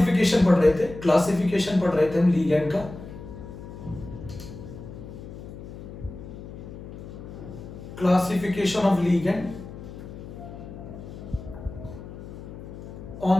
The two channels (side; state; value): left; noise; hum, 12 dB below the sound